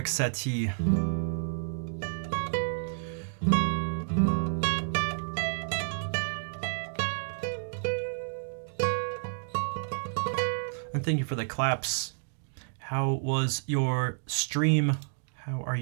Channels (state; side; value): silent; left; digital silence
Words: Satie. And thank you for the claps. How was your stream? How are